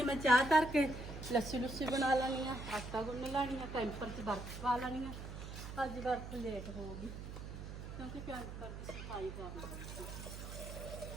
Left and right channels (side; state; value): right; noise; hum, 9 dB below the sound